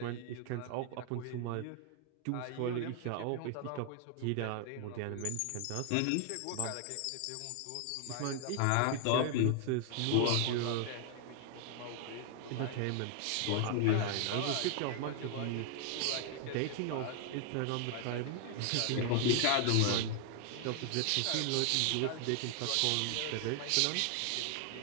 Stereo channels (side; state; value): both; different; correlation 0.00